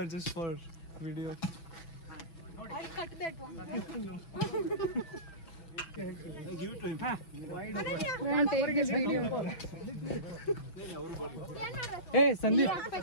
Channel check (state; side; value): late; right; 5.7 ms